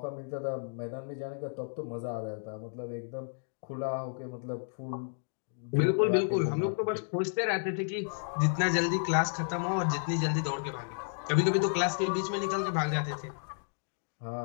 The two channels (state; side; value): silent; right; digital silence